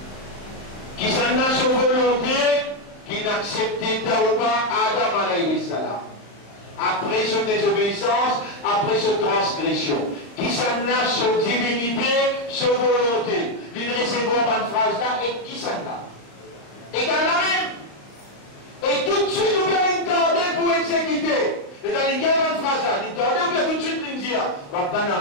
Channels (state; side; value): late; right; 34 ms